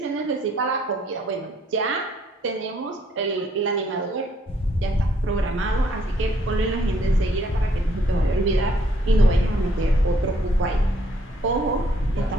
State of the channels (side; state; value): both; normal; correlation 0.67